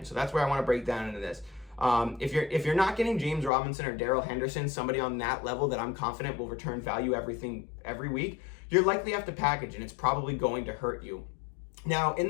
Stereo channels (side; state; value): right; drops out; at 3.5 s